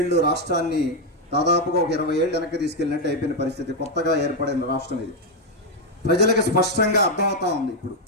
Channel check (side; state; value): both; normal; correlation 0.03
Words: రాష్ట్రాన్ని దాదాపుగా ఒక 20 ఏళ్ళు వెనక్కి తీసుకెళ్ళినట్టు అయిపోయిన పరిస్థితి. కొత్తగా ఏర్పడిన రాష్ట్రం ఇది. ప్రజలకు స్పష్టంగా అర్థమవుతా ఉంది. ఇప్పుడు